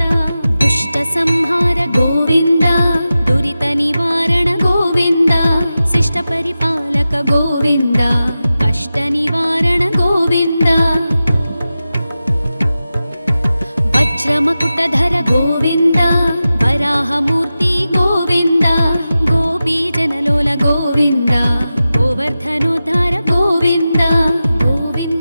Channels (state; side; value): inverted; both; correlation -0.94